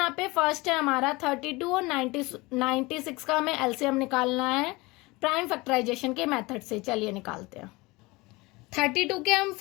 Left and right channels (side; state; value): right; quieter; 23.2 dB